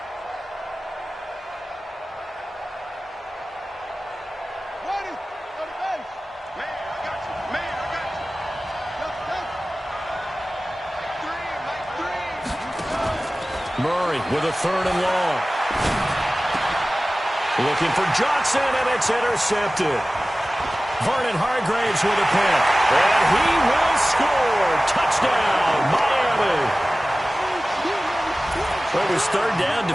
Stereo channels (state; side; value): normal; both; correlation 0.97